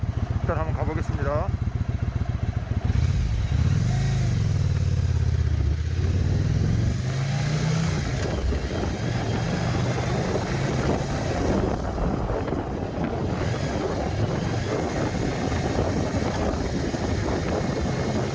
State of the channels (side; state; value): both; identical; correlation 1.00